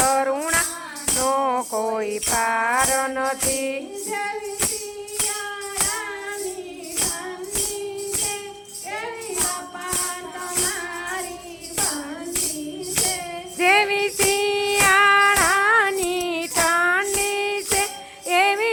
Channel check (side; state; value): both; identical; correlation 1.00